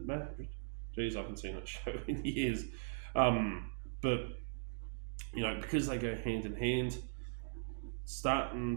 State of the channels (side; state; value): left; silent; digital silence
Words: marriage. Jeez, I haven't seen that show in years. But because they go hand in hand,